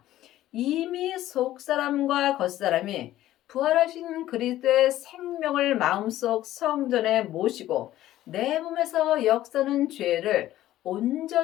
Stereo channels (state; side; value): quieter; right; 14.1 dB